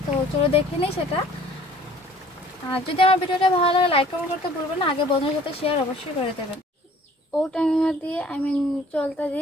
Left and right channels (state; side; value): normal; both; correlation 0.53